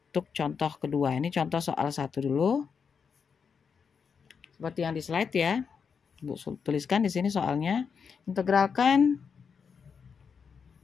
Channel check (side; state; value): right; quieter; 6.2 dB